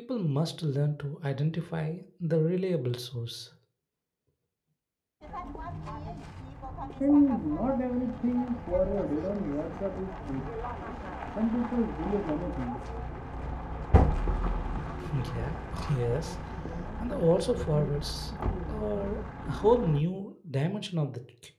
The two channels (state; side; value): identical; both; correlation 1.00